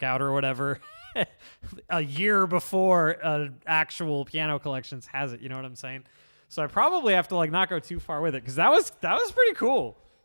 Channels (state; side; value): inverted; both; correlation -1.00